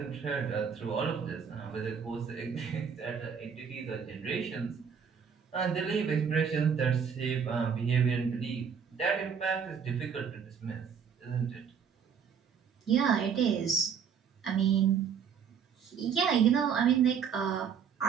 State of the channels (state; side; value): quieter; left; 7.0 dB